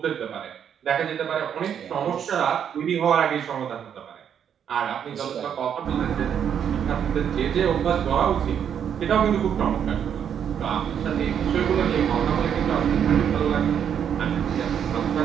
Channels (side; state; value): left; quieter; 8.5 dB